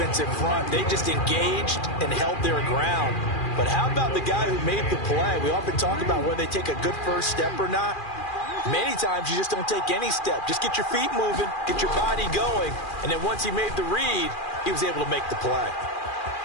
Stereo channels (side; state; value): right; late; 2.4 ms